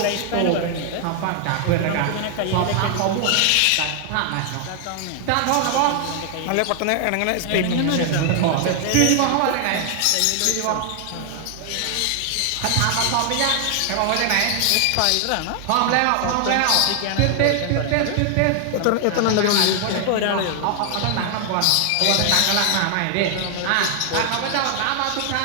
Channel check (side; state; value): both; different; correlation 0.00